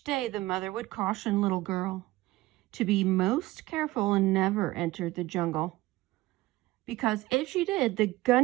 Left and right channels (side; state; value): left; quieter; 18.4 dB